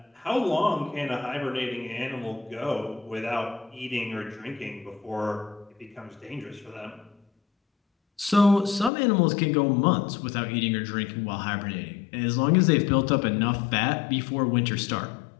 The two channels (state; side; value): drops out; right; at 8.9 s